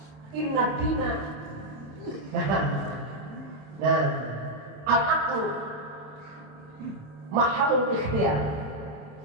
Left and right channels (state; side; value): late; left; 27 ms